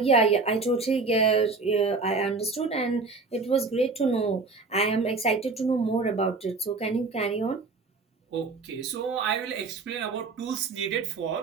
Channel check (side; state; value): left; quieter; 4.0 dB